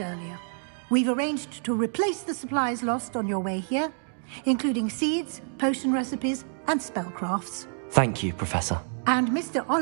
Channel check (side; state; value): left; silent; 58 dB below the other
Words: we've arranged to replace the supplies lost on your way here, including seeds, potion recipes, and spellcrafts. Thank you, Professor. And Mr.